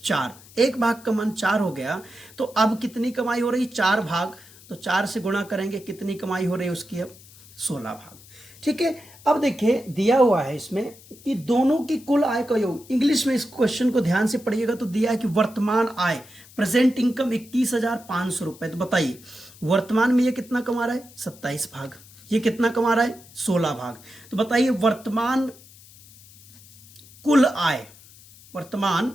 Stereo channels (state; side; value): noise; left; hiss, 23 dB below the sound